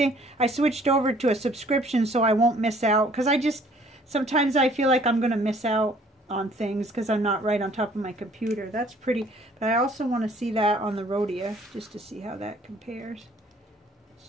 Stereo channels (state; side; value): normal; both; correlation 0.58